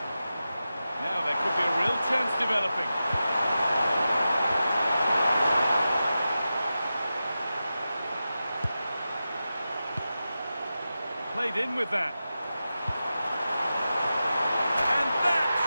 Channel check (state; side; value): inverted; both; correlation -0.92